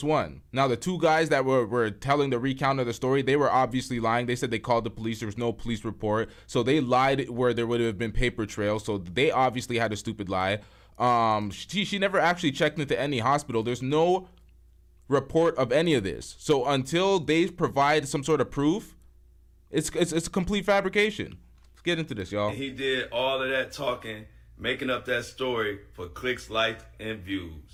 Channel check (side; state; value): both; identical; correlation 1.00